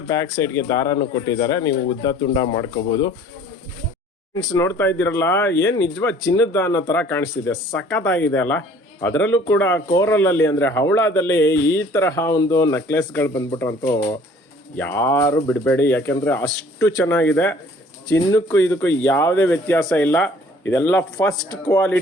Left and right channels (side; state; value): both; normal; correlation 0.53